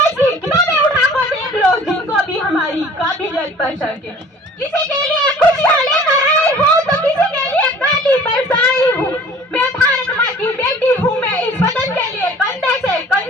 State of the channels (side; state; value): both; normal; correlation 0.48